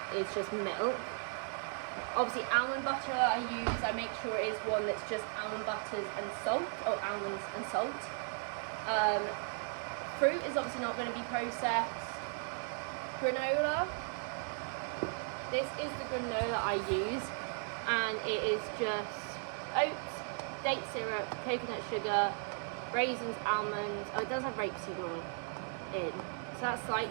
is just milk. Obviously, almond butter that I use, I make sure it is one that's just almond butters and salt, or almonds and salt. Fruit is obviously not going to be processed. Granola. This is the granola I use, and it is just oats, date syrup, coconut sugar, raisins, almonds. Oh, it does have rapeseed oil in. So that's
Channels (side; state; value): left; silent; 53 dB below the other